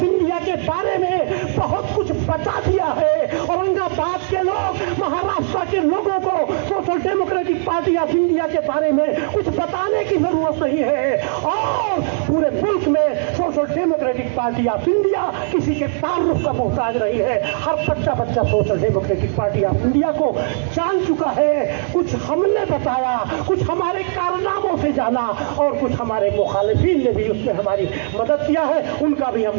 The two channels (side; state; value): left; silent; digital silence